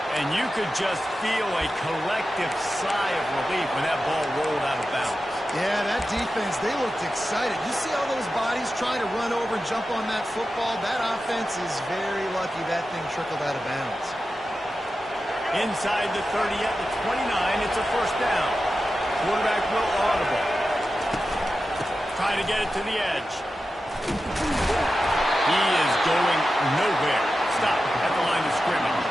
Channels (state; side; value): normal; both; correlation 0.92